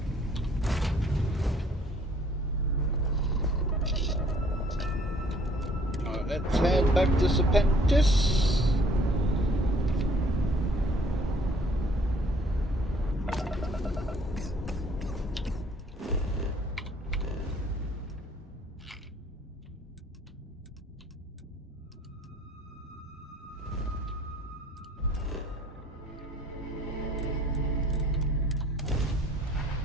Alright, let's head back to Serpentis.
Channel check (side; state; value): both; normal; correlation 0.58